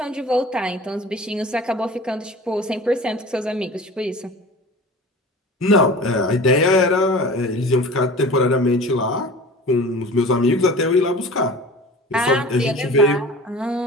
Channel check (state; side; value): normal; both; correlation 0.39